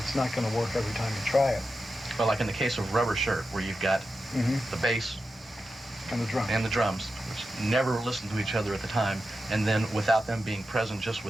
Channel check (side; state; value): both; normal; correlation 0.90